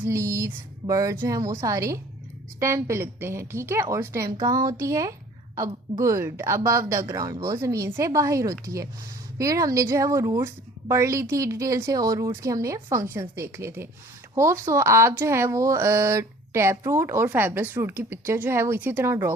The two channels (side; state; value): both; normal; correlation 0.50